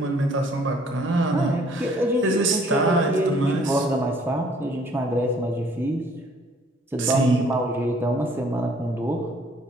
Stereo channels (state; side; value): normal; both; correlation 0.59